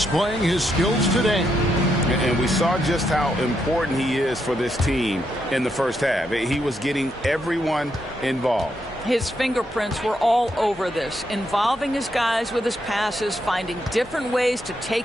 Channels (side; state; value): both; normal; correlation 0.79